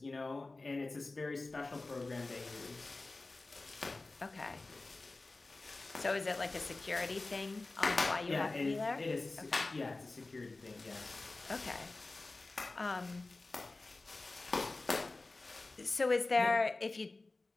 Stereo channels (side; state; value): right; quieter; 3.3 dB